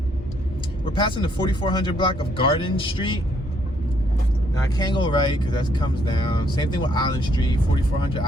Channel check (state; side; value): normal; both; correlation 0.70